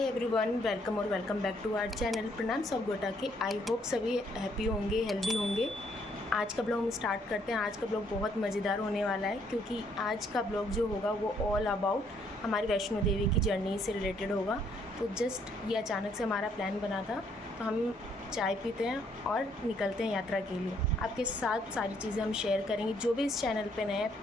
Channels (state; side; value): normal; both; correlation 0.68